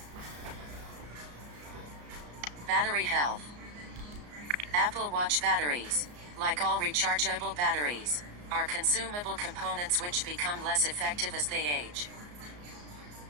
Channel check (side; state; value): left; late; 34 ms